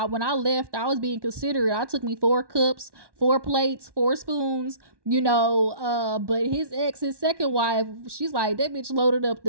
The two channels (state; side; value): late; left; 1.1 ms